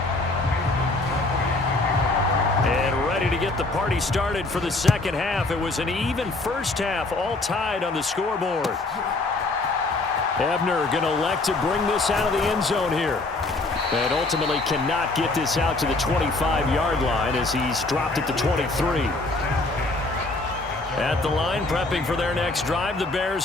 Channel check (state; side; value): quieter; right; 3.1 dB